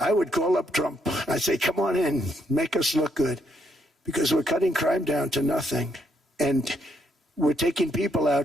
would call up Trump. I'd say, come on in, make us look good. Because we're cutting crime down to nothing. And we're taking people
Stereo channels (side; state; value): both; normal; correlation 0.74